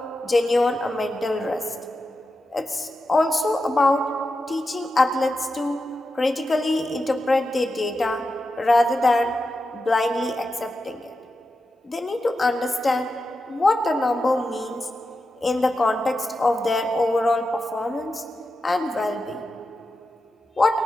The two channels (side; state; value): both; normal; correlation 0.90